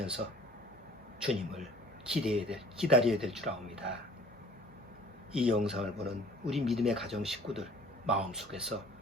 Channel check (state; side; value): normal; both; correlation 0.50